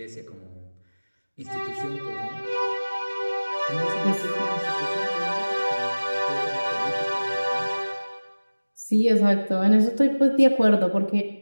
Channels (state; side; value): inverted; both; correlation -1.00